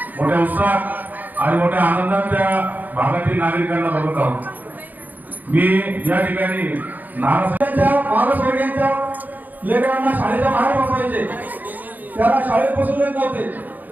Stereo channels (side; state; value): left; late; 0.083 ms